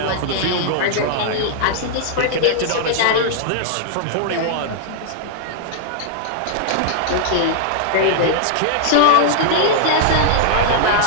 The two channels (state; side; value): different; both; correlation -0.01